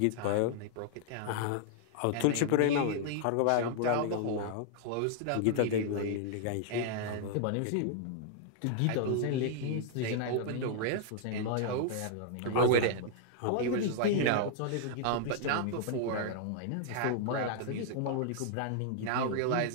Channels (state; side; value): different; both; correlation -0.01